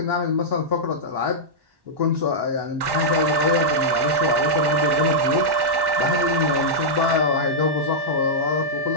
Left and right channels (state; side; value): late; left; 1.1 ms